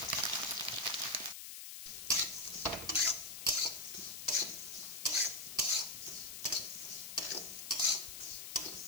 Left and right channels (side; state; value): left; noise; hiss, 9 dB below the sound